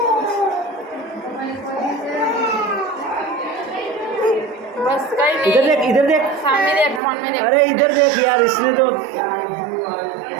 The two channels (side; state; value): left; drops out; at 7.0 s